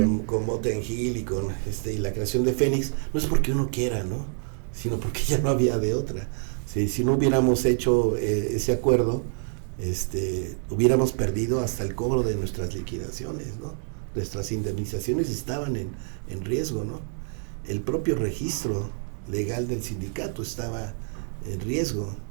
Motén Gil y con y la creación de Fénix, no es porque uno quiera, ¿no?, sino porque ya no había de otra. Si no hubiéramos hecho ese acuerdo, hubiéramos perdido hasta el cobro de nuestras liquidaciones, ¿no? Nuestras indemnizaciones estaban en riesgo, ¿no? El propio registro legal del sindicato estaba en riesgo,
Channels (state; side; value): silent; left; 60 dB below the other